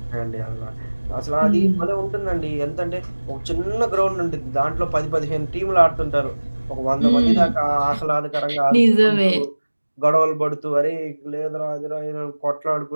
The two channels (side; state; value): both; inverted; correlation -1.00